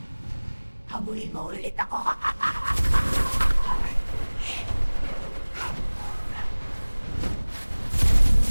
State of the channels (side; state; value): both; inverted; correlation -1.00